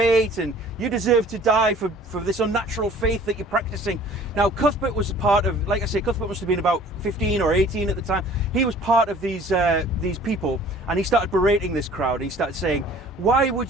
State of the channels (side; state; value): both; normal; correlation 0.50